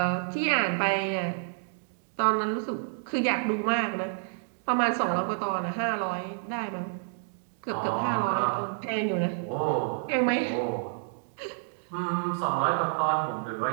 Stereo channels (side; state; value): left; silent; digital silence